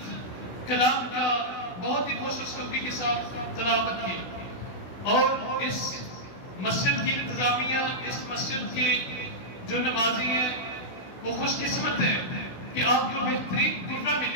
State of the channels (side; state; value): right; late; 16 ms